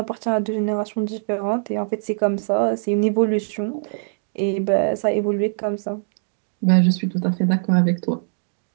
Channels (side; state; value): left; silent; digital silence